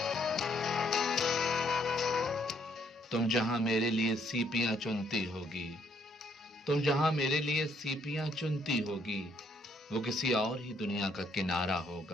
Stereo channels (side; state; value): both; normal; correlation 0.69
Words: تم جہاں میرے لیے سیپیاں چنتی ہوگی، تم جہاں میرے لیے سیپیاں چنتی ہوگی، وہ کسی اور ہی دنیا کا کنارہ